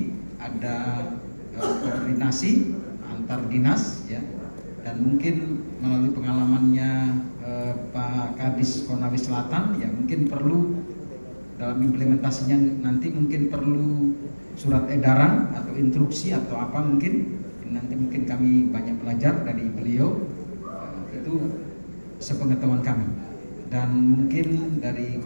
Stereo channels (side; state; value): both; inverted; correlation -1.00